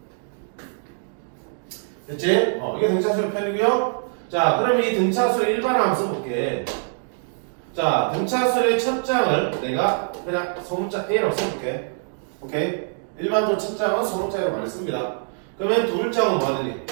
됐지? 이게 등차수의 편이고요. 자, 그러면 이 등차수의 일반화 한번 써볼게. 자, 등차수의 첫 장을 내가 그냥 소문자 A라고 써볼게. 오케이? 일반적으로 첫 장은 소문자 A로 많이 씁니다. 그러면 두 장은 뭐 하더니?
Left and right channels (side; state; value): left; silent; 62 dB below the other